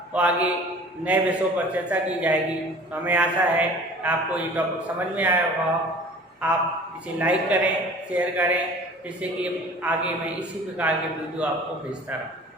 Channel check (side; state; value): both; normal; correlation 0.45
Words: और आगे नए विषयों पर चर्चा की जाएगी। तो हमें आशा है आपको ये टॉपिक समझ में आया होगा। आप इसे लाइक करें, शेयर करें, जिससे कि आगे मैं इसी प्रकार के वीडियो आपको भेजता रहूँ।